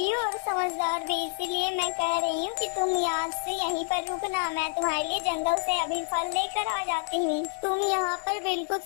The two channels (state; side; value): silent; right; digital silence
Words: हो और समझदार भी, इसीलिए मैं कह रही हूँ कि तुम आज से यहीं पर रुकना। मैं तुम्हारे लिए जंगल से अभी फल लेकर आ जाती हूँ। तुम यहाँ पर बिल्कुल